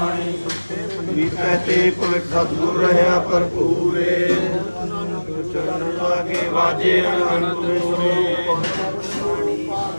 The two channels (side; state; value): both; inverted; correlation -1.00